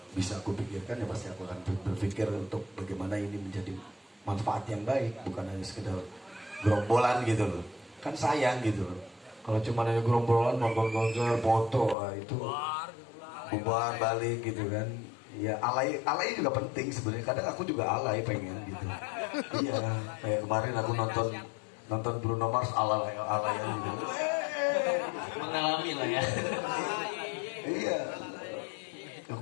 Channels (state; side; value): drops out; right; at 12.0 s